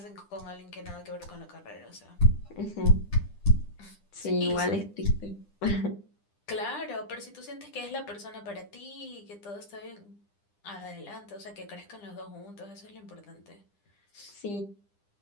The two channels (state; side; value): late; right; 9.9 ms